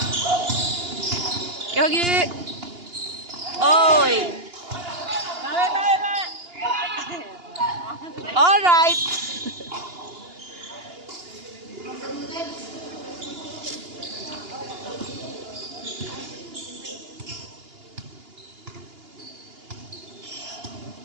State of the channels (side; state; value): left; late; 2.8 ms